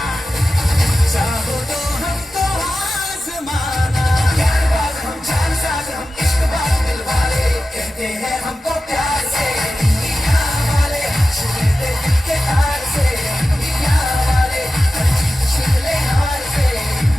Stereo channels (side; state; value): both; normal; correlation 0.93